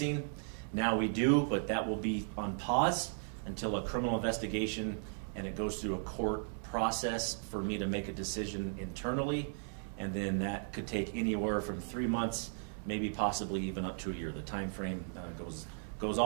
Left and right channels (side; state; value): left; silent; 54 dB below the other